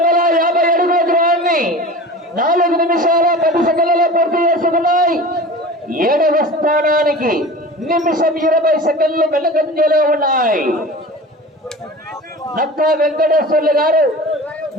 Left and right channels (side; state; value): both; normal; correlation 0.36